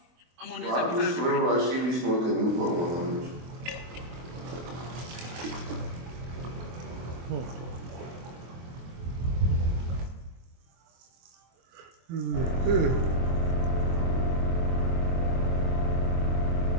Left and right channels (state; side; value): late; left; 24 ms